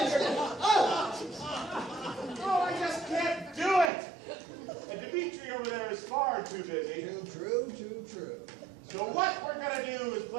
your it. ground. Oh! Oh, I just can't do it! And Dimitri over there is far too busy. Too true, too true. So what we're going to do is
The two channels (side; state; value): left; drops out; at 3.9 s